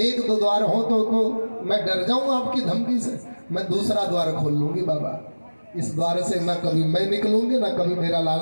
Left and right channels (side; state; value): both; inverted; correlation -1.00